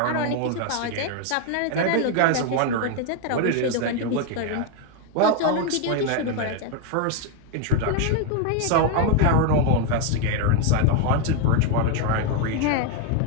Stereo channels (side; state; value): both; different; correlation 0.01